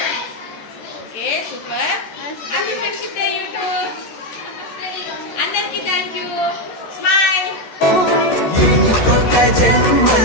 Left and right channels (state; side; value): late; right; 14 ms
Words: Okay, super. Happy friendship day YouTube. అందరికీ థ్యాంక్ యూ. స్మైల్. ఇంకొక